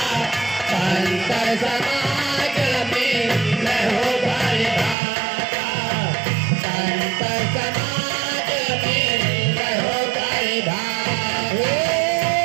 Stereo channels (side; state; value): left; drops out; at 5.0 s